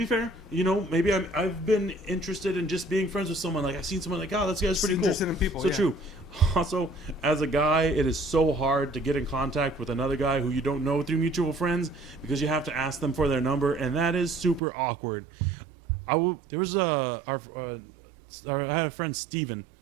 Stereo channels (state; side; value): drops out; left; at 14.6 s